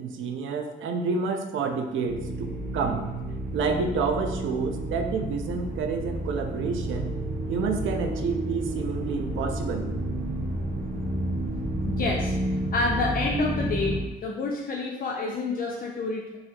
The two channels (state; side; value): normal; both; correlation 0.48